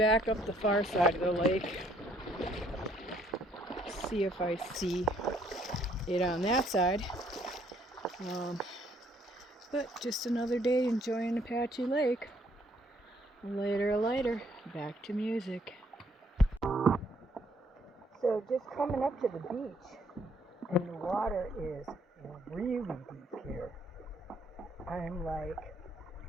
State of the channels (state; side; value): normal; both; correlation 0.67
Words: up the far side of the lake. See if I see it on that side. But just another day enjoying Apache Lake. Later, back to music. So just coming up to the beach, and the water is really deep here. I'm like